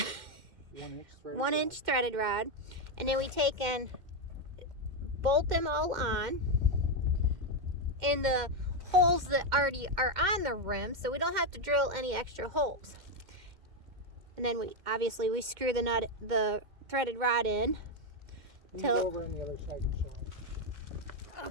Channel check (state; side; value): late; left; 2.1 ms